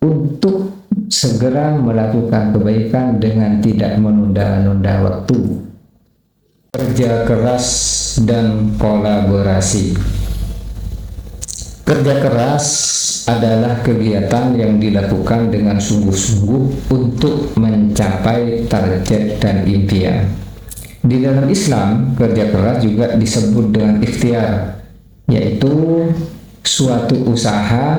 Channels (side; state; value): both; identical; correlation 1.00